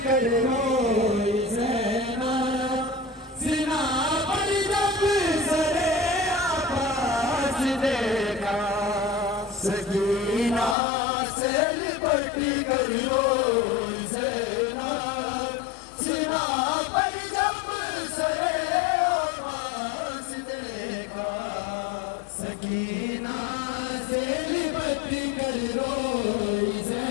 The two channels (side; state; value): right; drops out; at 10.8 s